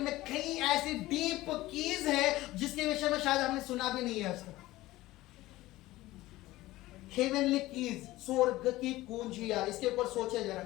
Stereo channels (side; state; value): right; quieter; 17.5 dB